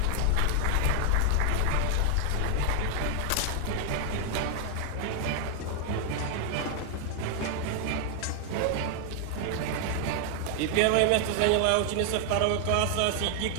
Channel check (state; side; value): different; both; correlation 0.00